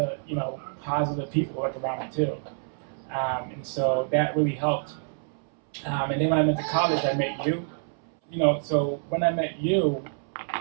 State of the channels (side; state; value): left; silent; 60 dB below the other